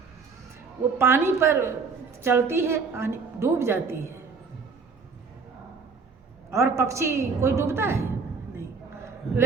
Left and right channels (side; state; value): left; quieter; 5.0 dB